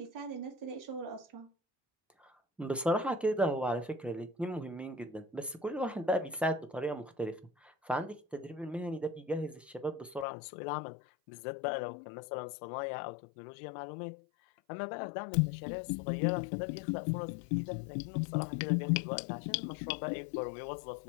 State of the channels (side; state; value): right; drops out; at 10.2 s